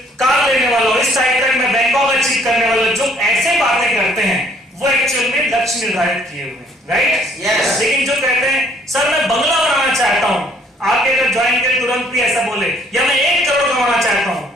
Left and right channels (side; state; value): both; normal; correlation 0.62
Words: कार लेने वाला हूँ, इस तारीख तक मैं बैंकॉक अचीव करने वाला हूँ। जो ऐसे बातें करते हैं वो एक्चुअल में लक्ष्य निर्धारित किए हुए हैं, राइट? यस। लेकिन जो कहते हैं सर मैं बंगला बनाना चाहता हूँ, आपके अगर ज्वाइन करें तुरंत भी ऐसा बोले, या मैं 1 करोड़ कमाना चाहता हूँ,